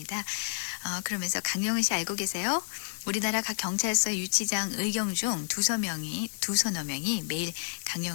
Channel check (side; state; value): right; silent; digital silence